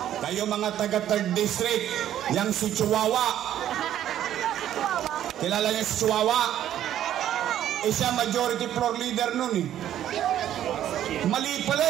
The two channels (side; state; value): left; quieter; 11.4 dB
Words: kayo mga taga 3rd District, yang si Chihuahua. Kilala niyo si Chihuahua? Siya majority floor leader nun eh. Mali pala